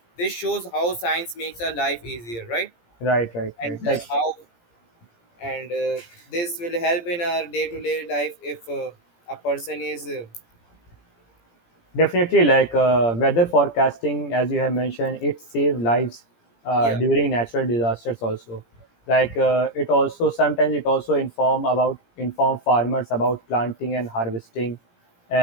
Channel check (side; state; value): right; late; 17 ms